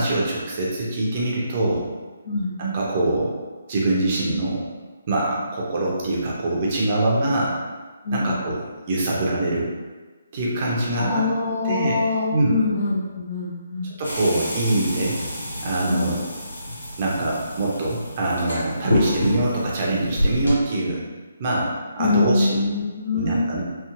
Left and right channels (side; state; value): both; inverted; correlation -0.75